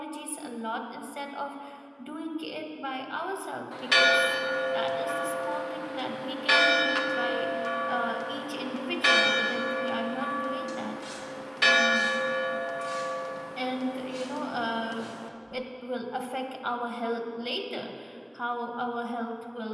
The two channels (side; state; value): both; identical; correlation 1.00